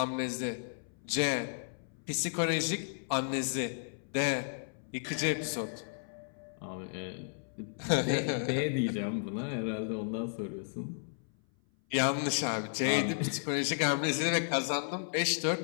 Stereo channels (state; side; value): silent; right; 55 dB below the other